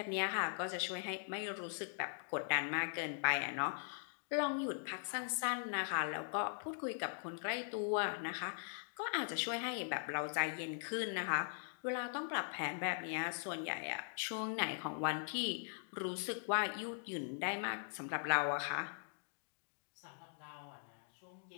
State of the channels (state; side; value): silent; right; digital silence